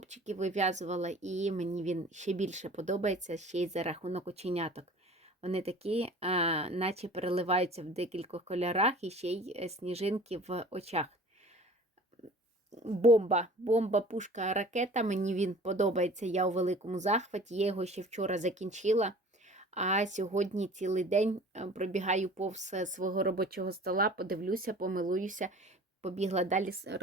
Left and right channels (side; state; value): both; normal; correlation 0.45